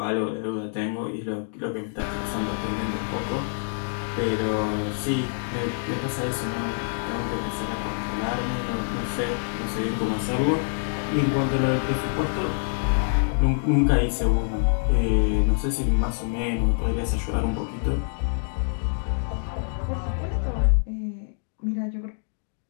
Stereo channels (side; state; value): right; silent; digital silence